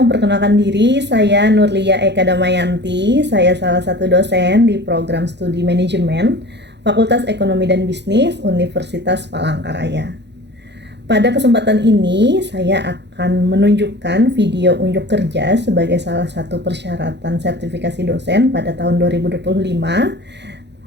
diri, saya Nurlia Eka Damayanti. Saya salah satu dosen di program studi manajemen Fakultas Ekonomi dan Bisnis Universitas Palangkaraya. Pada kesempatan ini, saya akan menunjukkan video unjuk kerja sebagai salah satu persyaratan sertifikasi dosen pada tahun 2025,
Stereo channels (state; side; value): late; left; 0.50 ms